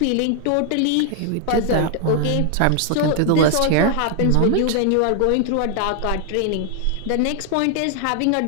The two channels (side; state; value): both; different; correlation 0.00